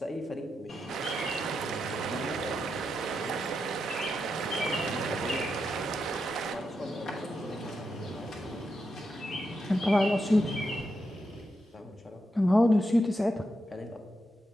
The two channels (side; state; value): both; normal; correlation 0.85